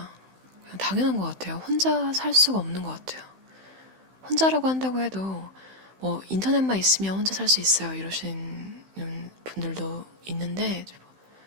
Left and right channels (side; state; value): left; late; 16 ms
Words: 그냥 당연한 것 같아요. 혼자 살 수가 없는 것 같아요. 혼자라고 한다고 해도 뭐 인터넷만 있으면 혼자 살 수 있어요 이러시는 분들도 있는데,